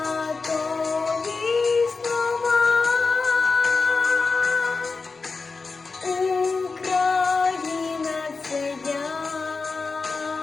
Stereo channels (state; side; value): quieter; right; 4.3 dB